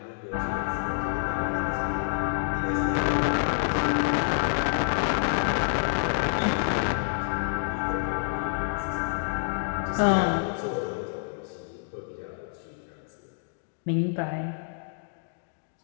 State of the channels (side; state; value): right; silent; digital silence